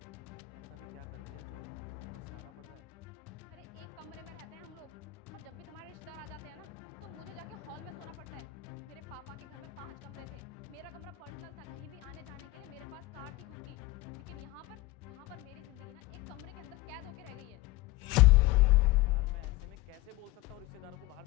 भी क्या कर दिया जो तुम्हें पछताना पड़ रहा है? अरे एक कमरे में रहते हैं हम लोग, और जब भी तुम्हारे रिश्तेदार आ जाते हैं ना तो मुझे जाके हॉल में सोना पड़ता है। मेरे पापा के घर में 5 कमरे थे, मेरा कमरा पर्सनल था, कहीं भी आने जाने के लिए मेरे पास कार थी खुद की। लेकिन यहाँ पर मेरी जिंदगी ना एक कमरे के अंदर कैद होके रह गई है। यार मैं ऐसे में कैसे बोल सकता हूँ रिश्तेदारों को बाहर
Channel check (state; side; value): quieter; right; 18.6 dB